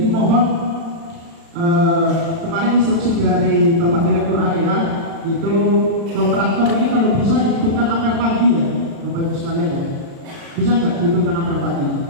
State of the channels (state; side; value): late; left; 36 ms